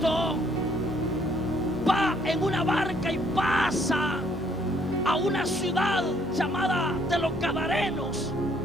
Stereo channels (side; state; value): both; normal; correlation 0.66